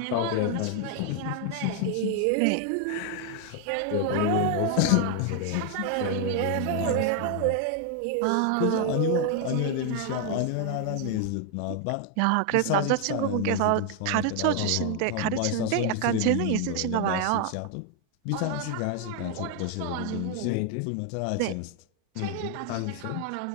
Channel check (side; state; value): both; different; correlation 0.00